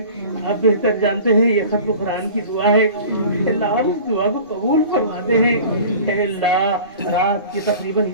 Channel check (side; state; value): both; inverted; correlation -0.41